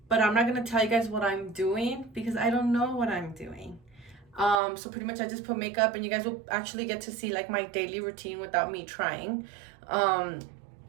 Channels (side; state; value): left; drops out; at 4.5 s